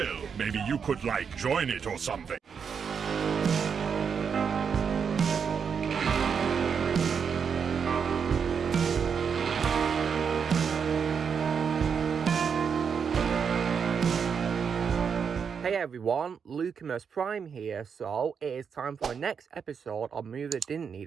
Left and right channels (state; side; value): quieter; left; 6.6 dB